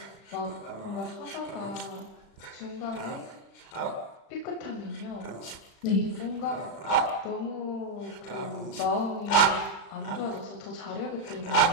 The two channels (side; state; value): right; late; 36 ms